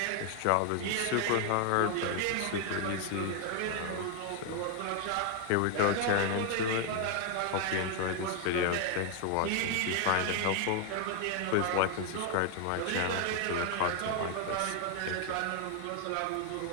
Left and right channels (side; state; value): both; different; correlation 0.00